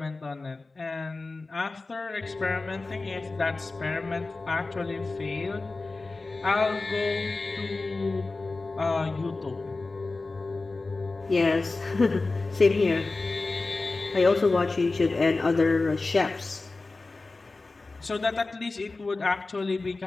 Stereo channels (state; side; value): quieter; right; 3.5 dB